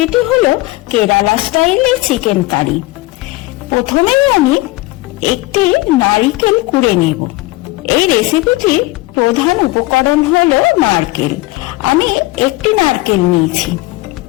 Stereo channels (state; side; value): quieter; right; 20.2 dB